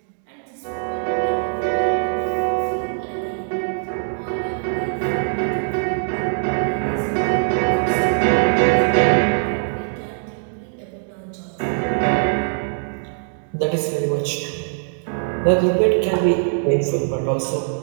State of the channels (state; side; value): silent; left; digital silence